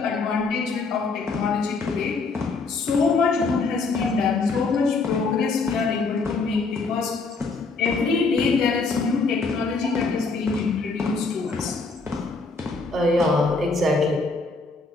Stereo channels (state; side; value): quieter; right; 4.0 dB